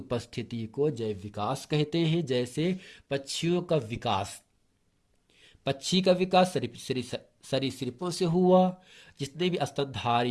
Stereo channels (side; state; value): both; identical; correlation 1.00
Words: को जैव विकास कहते हैं। जैसे पक्षियों का विकास, पक्षी का विकास सरीसृपों से हुआ। जितने भी